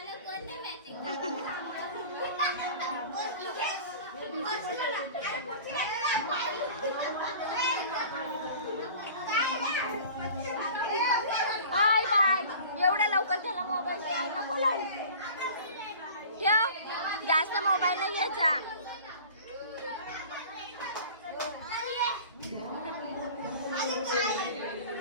Bye bye. एवढ्या लवकर त्याला मोबाईल नको लावू. ठेव. जास्त मोबाईल नाही घ्यायचा.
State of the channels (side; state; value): both; inverted; correlation -0.42